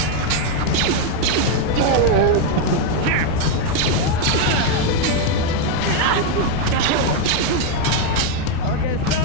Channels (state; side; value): different; both; correlation 0.02